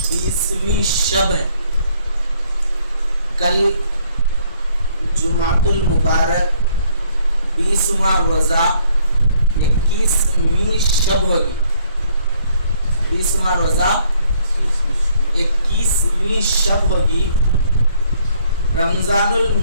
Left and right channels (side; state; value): both; inverted; correlation -0.65